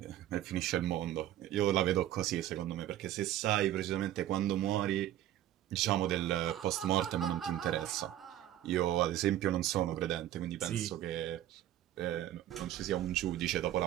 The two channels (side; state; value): left; quieter; 12.8 dB